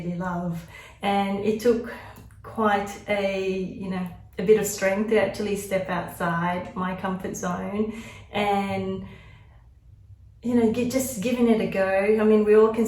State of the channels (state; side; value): identical; both; correlation 1.00